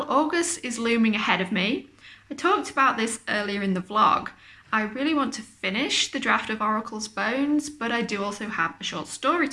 August is looming ahead of me. I talked about this earlier in the vlog. I really want to finish the draft of Oracle's Bones, but I do also have a short story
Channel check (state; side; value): identical; both; correlation 1.00